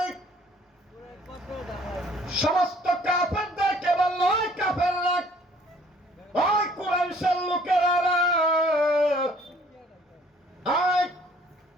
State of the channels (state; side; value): normal; both; correlation 0.57